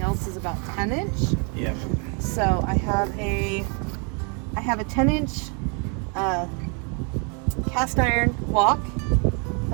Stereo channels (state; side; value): quieter; left; 36.9 dB